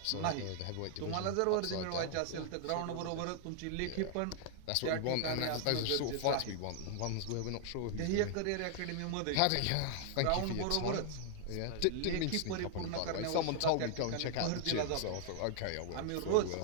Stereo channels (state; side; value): different; both; correlation 0.00